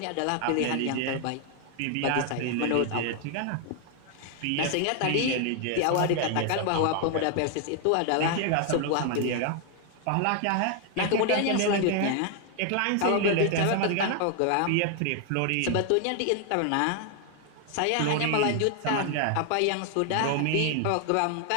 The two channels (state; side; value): different; both; correlation 0.00